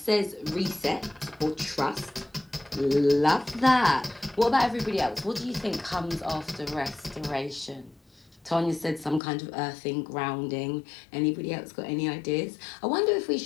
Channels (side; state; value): right; drops out; at 9.2 s